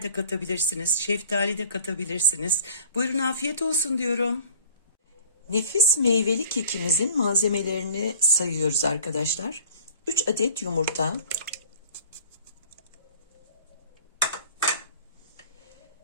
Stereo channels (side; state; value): both; inverted; correlation -0.48